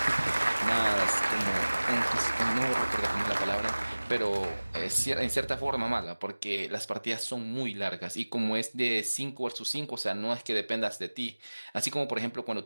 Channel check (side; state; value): both; inverted; correlation -1.00